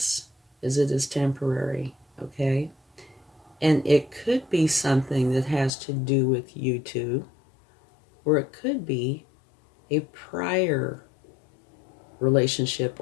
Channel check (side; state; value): right; drops out; at 5.7 s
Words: is it is temporary, okay? And it could be something that has to do with you two, or it could be a prior relationship